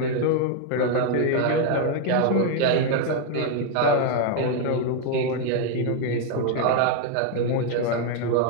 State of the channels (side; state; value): both; different; correlation 0.01